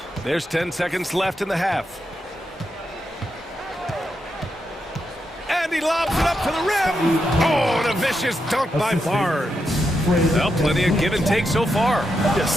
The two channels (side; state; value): both; normal; correlation 0.84